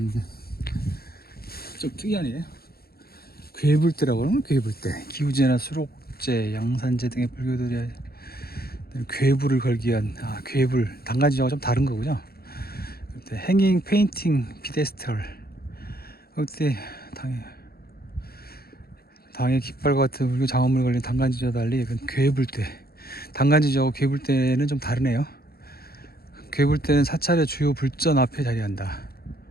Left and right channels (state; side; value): late; right; 0.45 ms